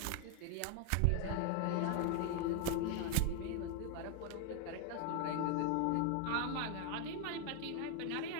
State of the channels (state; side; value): different; both; correlation 0.00